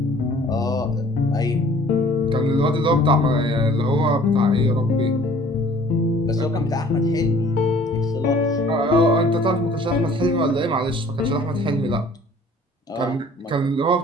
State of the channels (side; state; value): both; normal; correlation 0.53